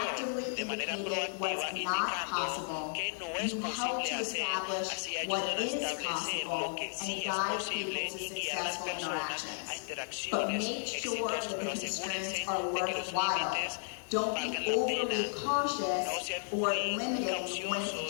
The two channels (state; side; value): silent; right; digital silence